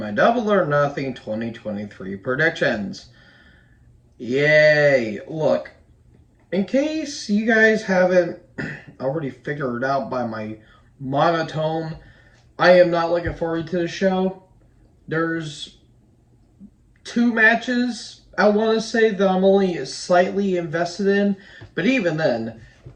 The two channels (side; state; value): both; identical; correlation 1.00